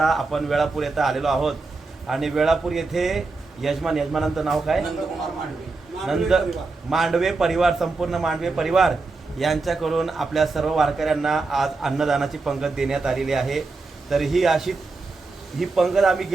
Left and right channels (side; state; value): left; quieter; 3.8 dB